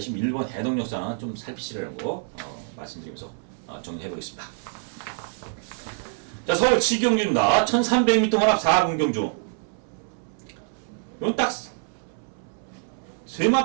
1번 해동역사는 좀 살피시라고 말씀드리면서 정리해보겠습니다. 자 서울 7경주입니다. 1300m 혼합 4군경주. 이건 딱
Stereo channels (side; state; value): left; silent; 60 dB below the other